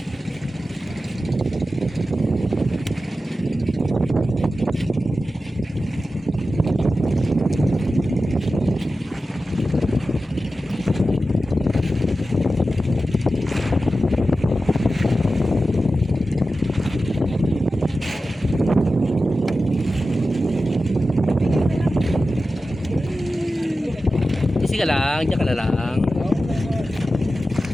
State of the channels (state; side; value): normal; both; correlation 0.93